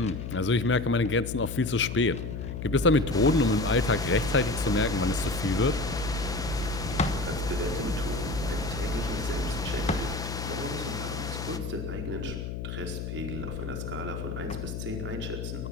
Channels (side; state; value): left; noise; hum, 6 dB below the sound